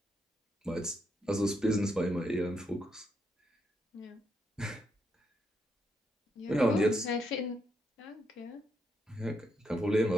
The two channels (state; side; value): normal; both; correlation 0.79